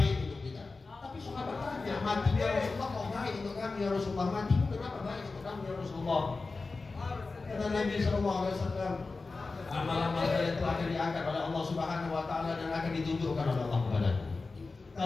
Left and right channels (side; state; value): right; quieter; 3.9 dB